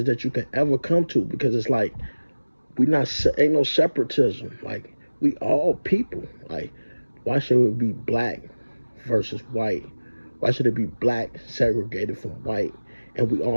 that you can ever come to, because it's like, we not, ain't no separatism. Like, we all people. Like, why should it be black versus white? Why should it be black segregated from white and we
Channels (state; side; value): inverted; both; correlation -1.00